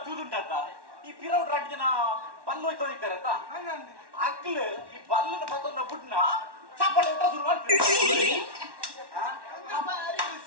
ತೂದುಂಡತ್ತ ಈ ಪಿರೌಡ್ ರಾಜ್ಯನ ಬಲ್ಲು ಹೋಯ್ತು ಇದ್ದಾರತ್ತ ಅಕ್ಲು ಈ ಬಲ್ಲನ ಪತ್ತೊಂದ ಬುಡ್ನ ಚಪ್ಪಳೆ ಊಟ ಶುರು ಮಾಡ್ತೀವಿ ಭಾರಿ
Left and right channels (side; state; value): left; late; 1.1 ms